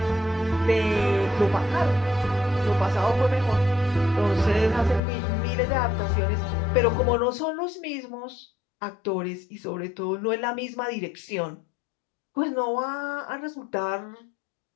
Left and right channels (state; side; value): drops out; right; at 5.0 s